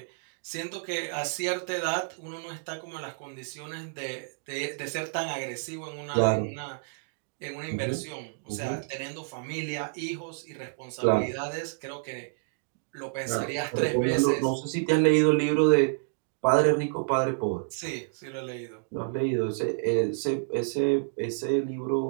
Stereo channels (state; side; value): silent; left; digital silence